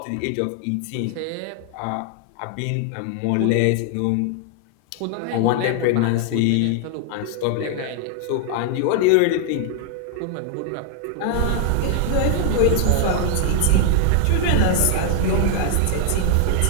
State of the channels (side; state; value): both; different; correlation 0.00